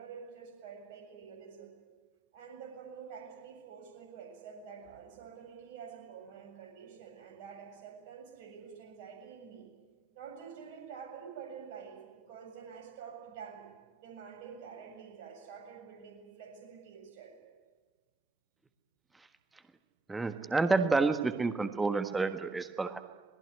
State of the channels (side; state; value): left; quieter; 3.6 dB